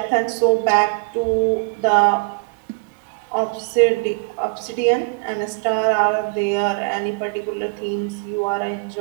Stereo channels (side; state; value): left; quieter; 31.3 dB